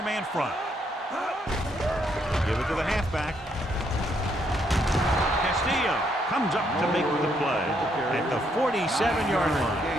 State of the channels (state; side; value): normal; both; correlation 0.73